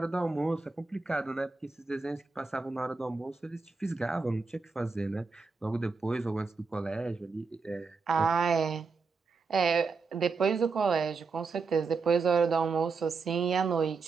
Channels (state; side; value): quieter; left; 4.5 dB